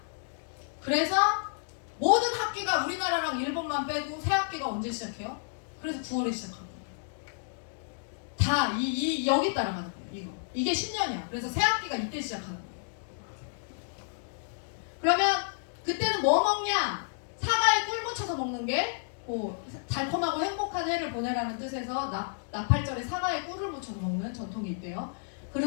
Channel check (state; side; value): silent; right; digital silence